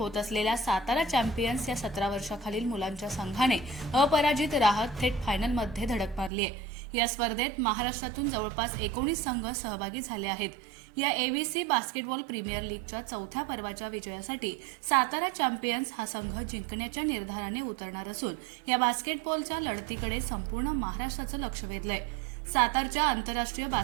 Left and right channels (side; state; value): left; drops out; at 6.3 s